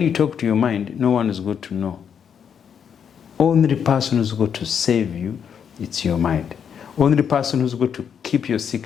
talk to your mind, no one is going to know. Only the person who's going to save you, it's your mind. Only the person who's going to keep your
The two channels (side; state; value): right; quieter; 7.7 dB